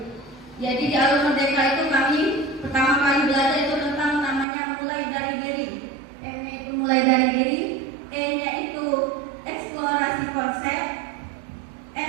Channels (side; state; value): left; drops out; at 4.5 s